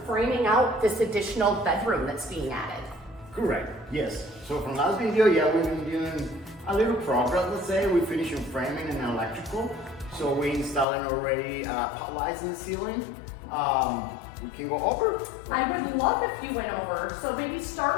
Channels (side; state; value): right; drops out; at 10.9 s